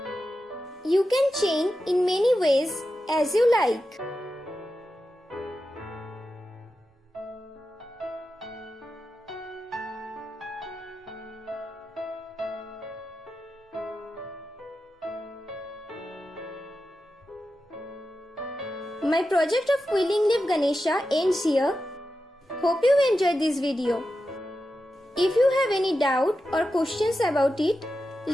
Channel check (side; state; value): both; normal; correlation 0.91